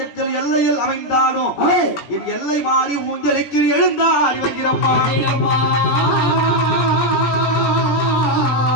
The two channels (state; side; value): late; right; 17 ms